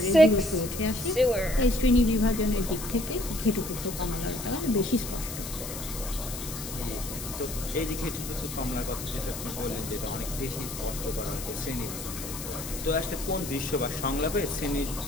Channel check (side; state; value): left; noise; hiss, 8 dB below the sound